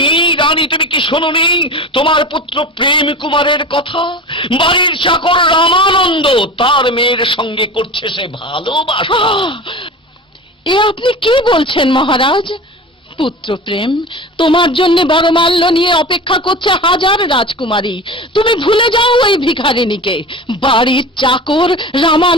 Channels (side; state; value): both; normal; correlation 0.33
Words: রানী, তুমি কি শোনোনি তোমার পুত্র প্রেম কুমারের কথা? বাড়ির চাকর রামানন্দ তার মেয়ের সঙ্গে করছে সে ভালোবাসা। এ আপনি কি বলছেন মহারাজ? পুত্র প্রেম, তোমার জন্য বড়মাল্য নিয়ে অপেক্ষা করছে হাজার রাজকুমারী। তুমি ভুলে যাও ওই ভিখারিনীকে, বাড়ির চাকর